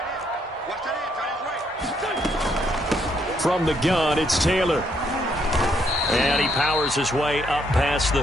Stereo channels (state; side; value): normal; both; correlation 0.72